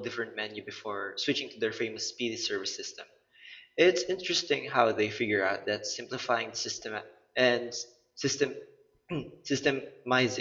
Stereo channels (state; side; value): identical; both; correlation 1.00